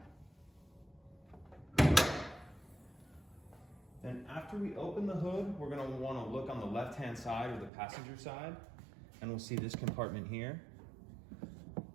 And after we open the hood, we're going to want to look on the left-hand side or the passenger side, and we'll see this compartment here.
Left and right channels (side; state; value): left; drops out; at 7.7 s